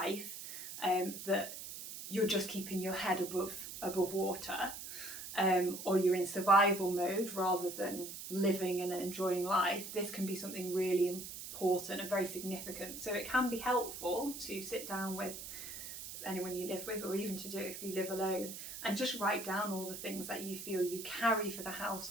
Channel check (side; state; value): right; noise; hiss, 9 dB below the sound